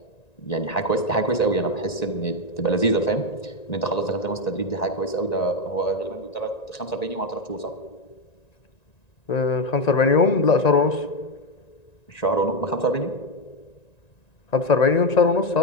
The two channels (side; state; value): right; late; 1.9 ms